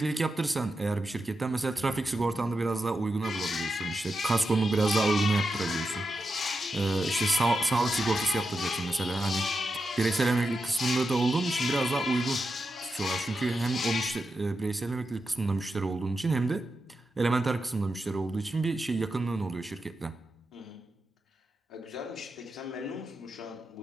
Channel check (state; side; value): normal; both; correlation 0.88